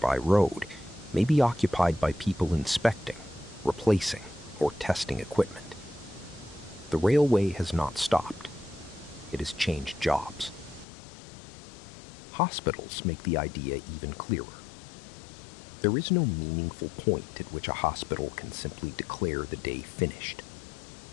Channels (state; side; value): drops out; right; at 10.9 s